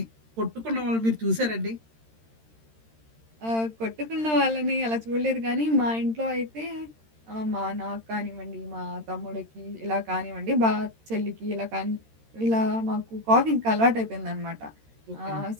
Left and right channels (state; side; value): late; left; 13 ms